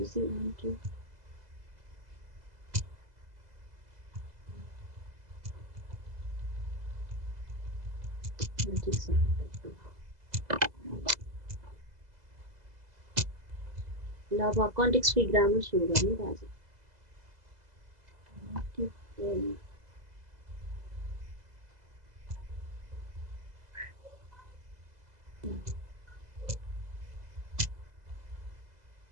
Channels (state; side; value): late; left; 2.0 ms